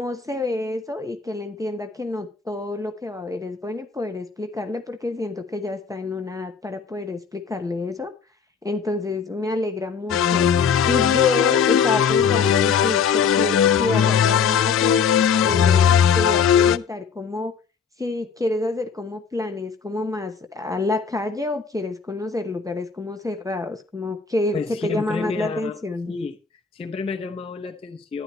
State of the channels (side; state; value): right; quieter; 6.3 dB